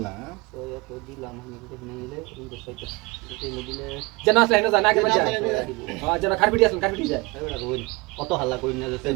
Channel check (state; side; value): quieter; left; 25.0 dB